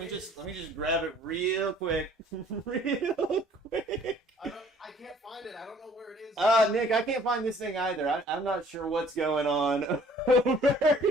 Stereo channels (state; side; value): normal; both; correlation 0.56